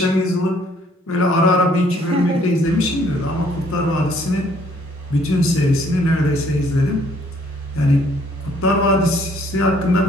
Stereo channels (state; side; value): normal; both; correlation 0.63